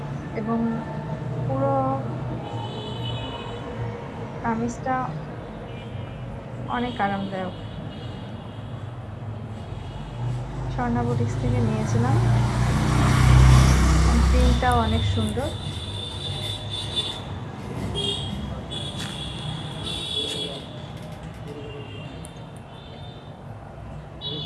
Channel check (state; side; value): identical; both; correlation 1.00